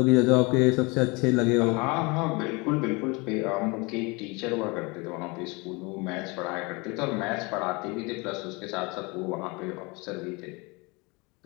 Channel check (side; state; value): right; quieter; 27.2 dB